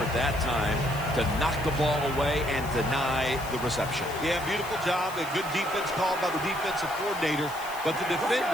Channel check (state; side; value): noise; left; hiss, 16 dB below the sound